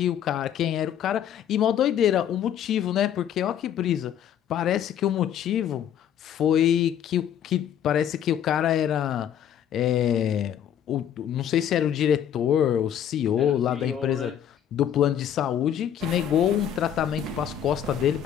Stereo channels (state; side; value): quieter; right; 9.7 dB